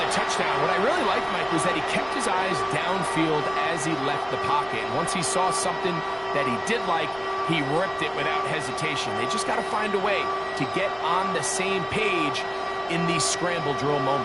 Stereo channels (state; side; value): noise; right; rumble, 24 dB below the sound